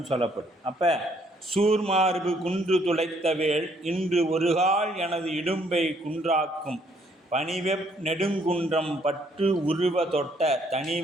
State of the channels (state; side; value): normal; both; correlation 0.67